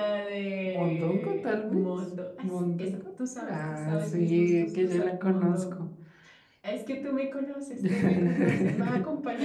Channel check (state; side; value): identical; both; correlation 1.00